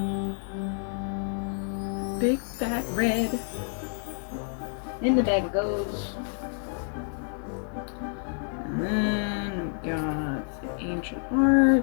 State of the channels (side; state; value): right; silent; 59 dB below the other